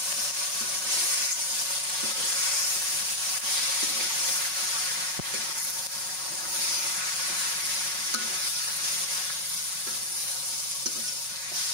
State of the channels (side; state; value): left; late; 5.4 ms